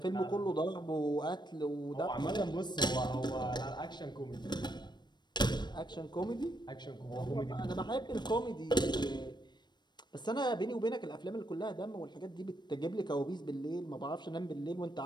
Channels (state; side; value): late; right; 0.21 ms